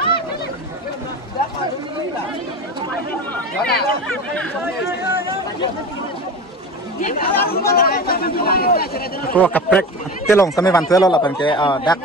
ko kaprek telong same van telo la pan ke dak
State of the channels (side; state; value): both; normal; correlation 0.30